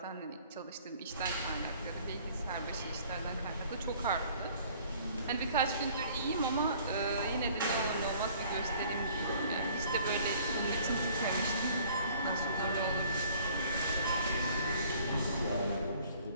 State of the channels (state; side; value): inverted; both; correlation -0.55